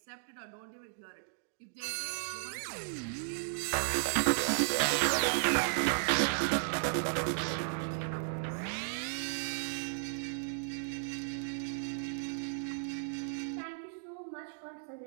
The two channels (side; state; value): left; silent; digital silence